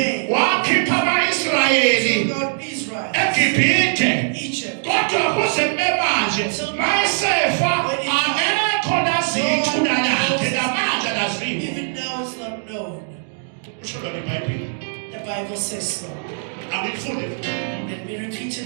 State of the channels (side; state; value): left; silent; 65 dB below the other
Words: wakhipha ama-Israyeli God Israel, eGibhithe. Egypt, Kodwa kuze kube manje mayesefa akekho lazi ithuna lakhe namanje alaziwa. even now it's not known. Kusho lona iBhayibheli. The Bible says so. Angikufunde. Let me repeat it